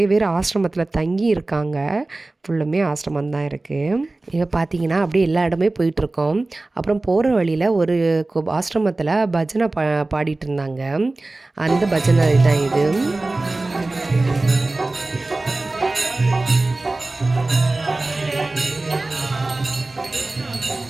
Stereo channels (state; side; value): quieter; left; 3.1 dB